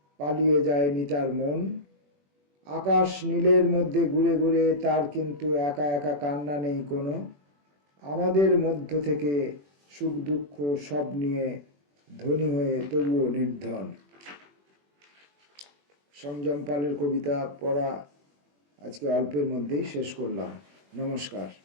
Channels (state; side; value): late; left; 21 ms